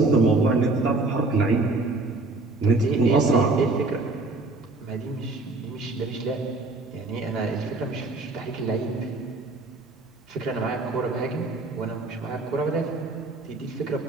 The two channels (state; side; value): quieter; left; 3.2 dB